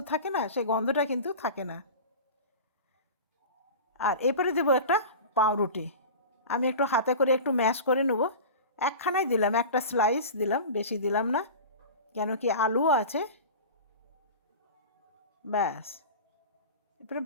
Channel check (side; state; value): both; inverted; correlation -0.32